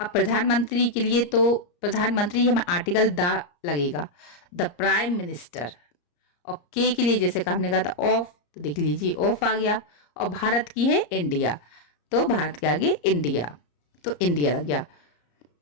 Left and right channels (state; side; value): late; right; 34 ms